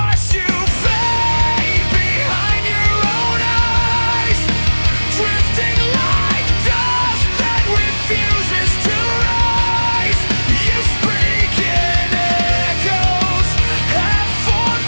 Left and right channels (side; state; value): both; inverted; correlation -1.00